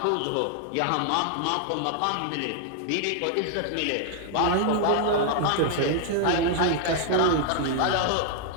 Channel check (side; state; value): both; different; correlation 0.00